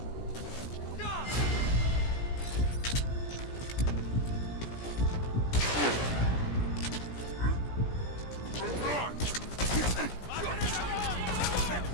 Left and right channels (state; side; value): late; right; 17 ms